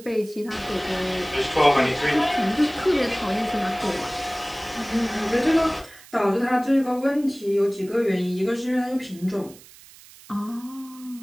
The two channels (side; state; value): right; noise; hiss, 22 dB below the sound